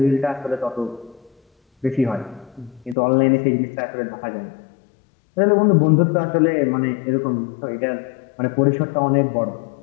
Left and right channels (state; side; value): drops out; right; at 3.0 s